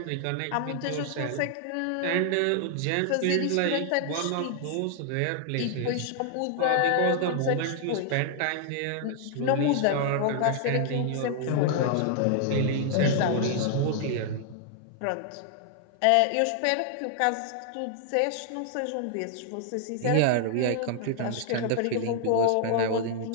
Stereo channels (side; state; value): both; different; correlation -0.01